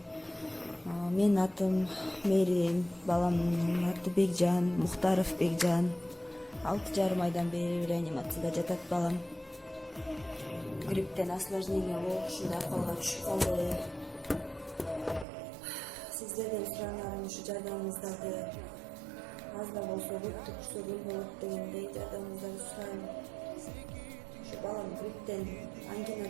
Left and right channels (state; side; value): drops out; left; at 15.2 s